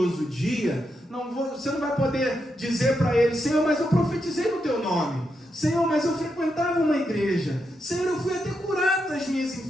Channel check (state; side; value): normal; both; correlation 0.84